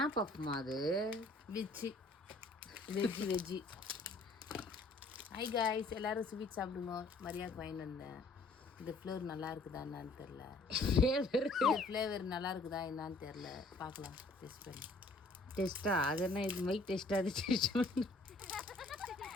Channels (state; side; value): quieter; right; 3.1 dB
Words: பஃப்மா அது? வெஜ்ஜி. ஹை காய்ஸ், எல்லோரும் ஸ்வீட் சாப்பிடுங்க. மரியாதைக்கு வாங்கிட்டு வந்தேன். இந்த ஃப்ளேவர் நல்லா இருக்குதா என்னான்னு தெரில. ஃப்ளேவர் நல்லா இருக்குதா என்னான்னு தெரில. பார்க்கலாம் டெஸ்ட் பண்ணி. டெஸ்ட்டா? அது என்ன இது மைக் டெஸ்ட்டா? அது டெஸ்ட் பண்ணு.